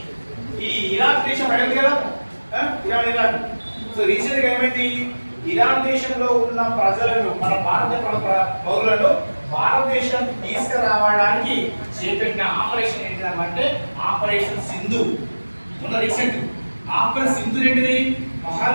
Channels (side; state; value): both; inverted; correlation -1.00